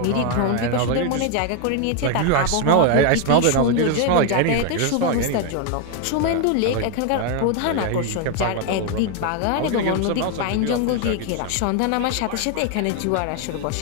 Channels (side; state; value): both; different; correlation 0.01